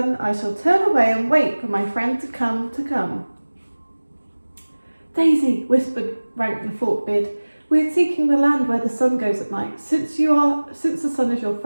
I shall turn away and wait for my friend to come. "Daisy," whispered Rank the Forkbeard, "we are seeking the land where the sun goes at night. Since the sun is your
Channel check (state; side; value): inverted; both; correlation -1.00